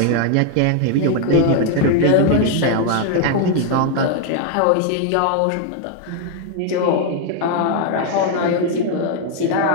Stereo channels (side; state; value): both; different; correlation 0.00